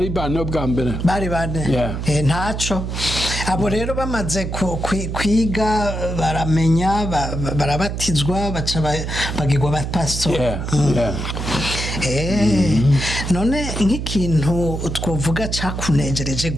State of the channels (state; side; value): noise; right; hum, 4 dB below the sound